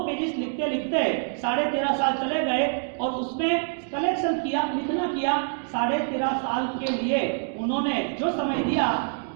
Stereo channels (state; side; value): silent; left; digital silence